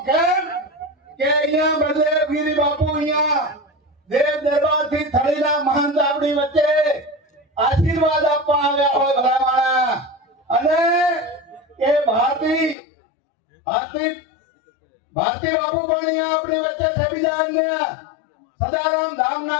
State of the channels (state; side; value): drops out; right; at 12.8 s